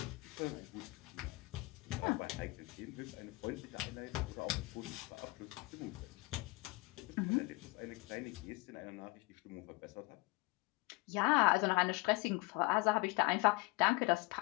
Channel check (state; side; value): quieter; right; 24.4 dB